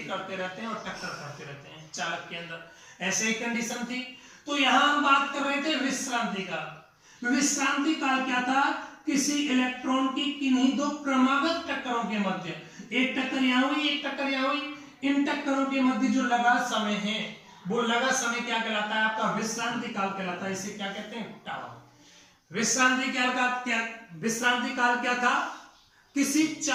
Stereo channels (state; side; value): identical; both; correlation 1.00